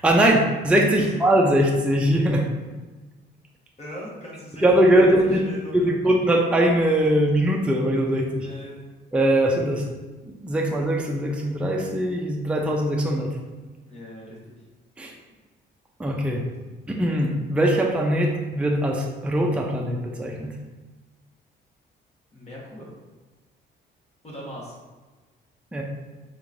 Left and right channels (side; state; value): both; normal; correlation 0.67